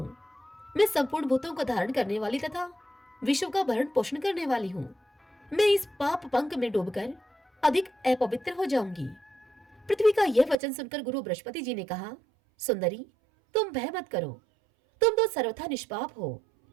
मैं संपूर्ण भूतों को धारण करने वाली तथा विश्व का भरण पोषण करने वाली हूँ। मैं इस पाप पंख में डूबकर अधिक अपवित्र हो जाऊंगी। पृथ्वी का यह वचन सुनकर गुरु बृहस्पति जी ने कहा, सुंदरी, तुम भय मत करो, तुम तो सर्वथा निष्पाप हो।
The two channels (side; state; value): left; drops out; at 10.6 s